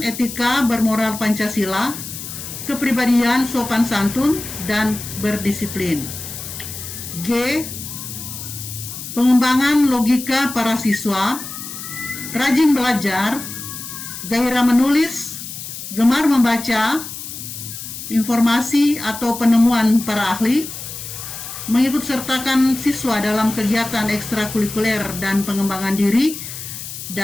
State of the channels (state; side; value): noise; left; hiss, 9 dB below the sound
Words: bermoral Pancasila, kepribadian sopan santun, dan berdisiplin. G. Pengembangan logika para siswa, rajin belajar, gairah menulis, gemar membaca informasi atau penemuan para ahli, mengikut sertakan siswa dalam kegiatan ekstrakurikuler dan pengembangan diri,